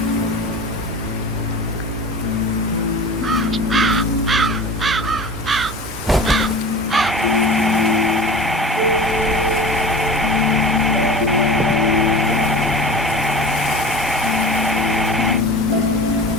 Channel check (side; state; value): both; normal; correlation 0.37